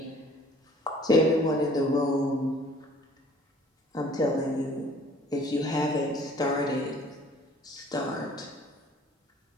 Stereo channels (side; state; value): both; normal; correlation 0.54